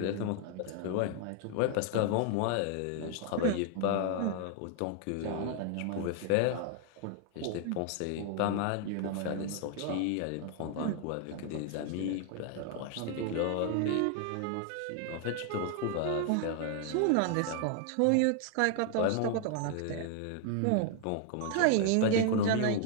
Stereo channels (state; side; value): different; both; correlation 0.00